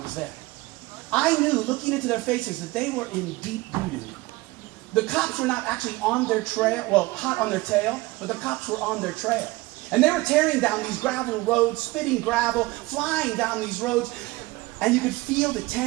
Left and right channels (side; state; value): left; quieter; 21.0 dB